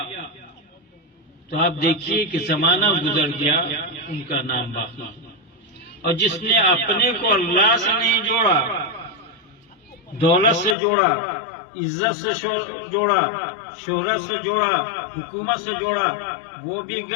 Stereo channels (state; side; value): drops out; right; at 10.8 s